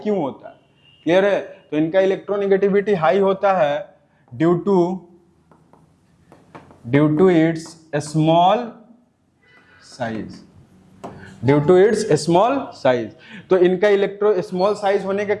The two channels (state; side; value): identical; both; correlation 1.00